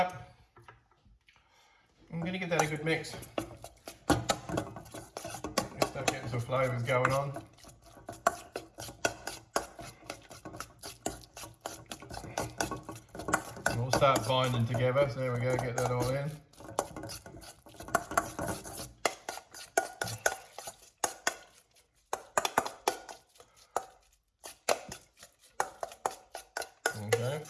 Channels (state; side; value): identical; both; correlation 1.00